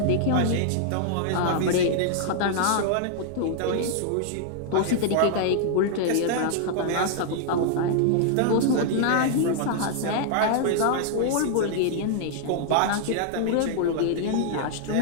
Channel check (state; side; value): different; both; correlation -0.01